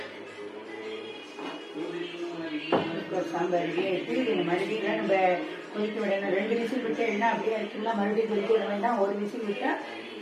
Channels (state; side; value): identical; both; correlation 1.00